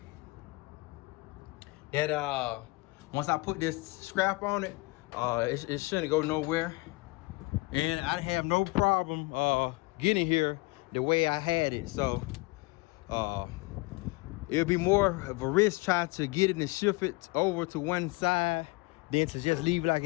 that once I put this scrap on it, it shouldn't go nowhere. And I have no problem getting here the way I had it. So it'll be more of a risk trying to get it and shift it over to one side than to just leave it like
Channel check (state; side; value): quieter; right; 24.1 dB